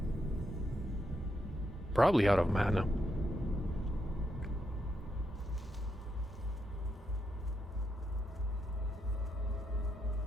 Probably out of mana.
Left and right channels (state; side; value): normal; both; correlation 0.81